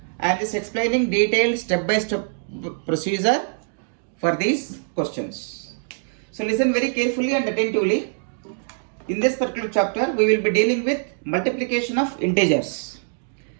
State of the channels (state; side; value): silent; left; digital silence